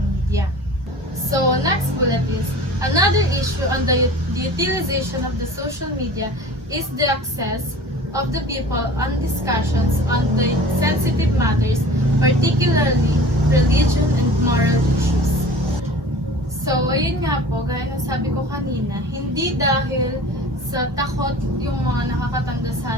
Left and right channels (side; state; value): both; normal; correlation 0.41